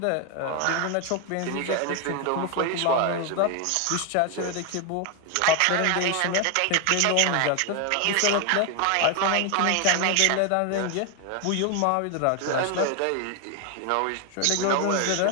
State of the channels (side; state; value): both; different; correlation 0.01